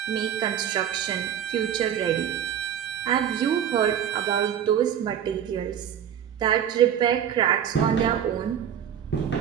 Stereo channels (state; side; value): quieter; left; 9.4 dB